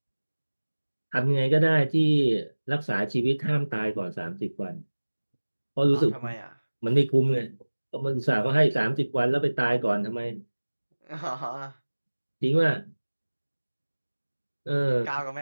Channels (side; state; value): both; inverted; correlation -1.00